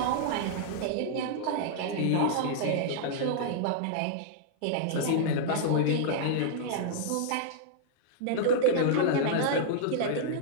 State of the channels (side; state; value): both; different; correlation -0.01